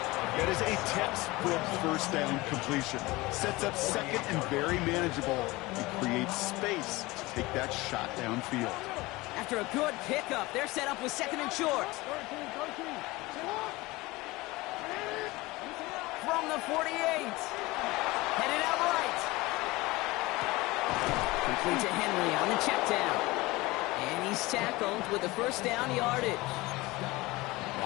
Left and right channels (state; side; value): quieter; right; 21.2 dB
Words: That is a textbook 1st down completion. Sets up 2nd and very manageable and creates space to take that shot downfield. After a good pickup, they're set up with 2nd and short. From the 48. Headed out right. Complete to Henry on the check down. And he's tackled with the 1st down yardage.